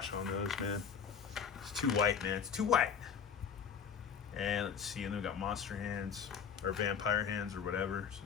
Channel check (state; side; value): quieter; right; 7.0 dB